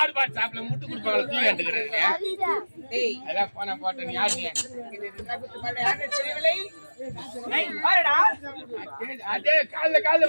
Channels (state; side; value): inverted; both; correlation -1.00